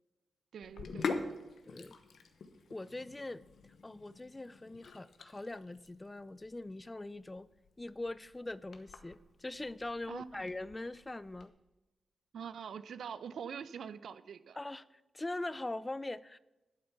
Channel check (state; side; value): normal; both; correlation 0.90